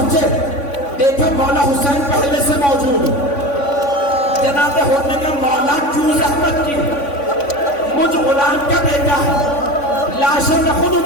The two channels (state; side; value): late; right; 3.5 ms